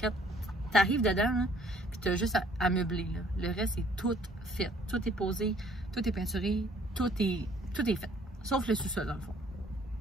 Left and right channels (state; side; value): normal; both; correlation 0.60